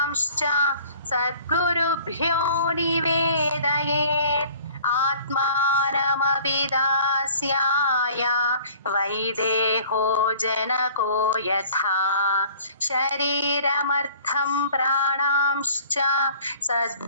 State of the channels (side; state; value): both; inverted; correlation -0.51